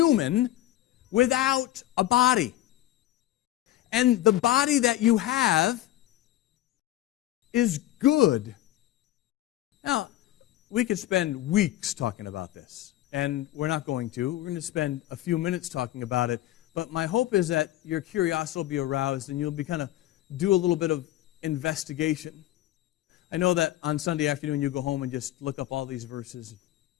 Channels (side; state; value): right; quieter; 14.6 dB